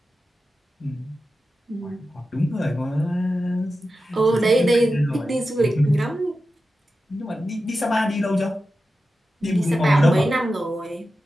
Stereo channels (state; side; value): normal; both; correlation 0.92